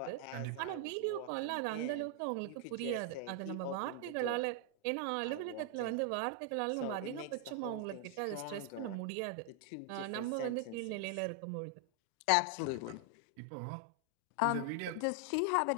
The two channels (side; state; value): both; different; correlation 0.00